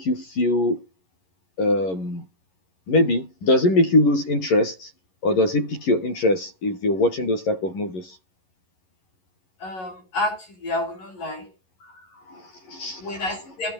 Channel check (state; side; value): late; right; 11 ms